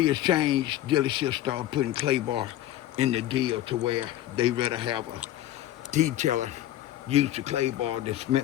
changed, dealerships started putting clayboy in the deal to where they rather have a detailer use the clayboy that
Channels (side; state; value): right; quieter; 13.6 dB